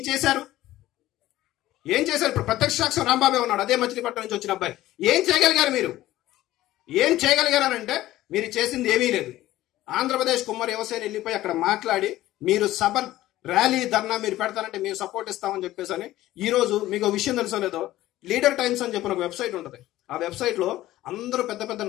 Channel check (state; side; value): quieter; right; 15.4 dB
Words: చేశారు? ఇప్పుడు ప్రత్యక్ష సాక్ష్యం రాంబాబే ఉన్నాడు, అదే మచిలీపట్నం నుంచి వచ్చిన అబ్బాయి. ఏం చేయగలిగారు మీరు? ఏం చేయగలిగారనంటే మీరు చేసింది ఏమీ లేదు. ఆంధ్రప్రదేశ్ కుమ్మర యువసేన వెళ్ళిపోయి అక్కడ మాట్లాడి మీరు సభ, ర్యాలీ, ధర్నా మీరు పెడతారంటే మేము సపోర్ట్ ఇస్తామని చెప్పేసి అని. ఈ రోజు మీకు విషయం తెలుసో లేదో, లీడర్ టైమ్స్ అని చెప్పిన ఒక వెబ్సైట్ ఉంటుంది. ఆ వెబ్సైట్ లో అందరూ పెద్ద పెద్ద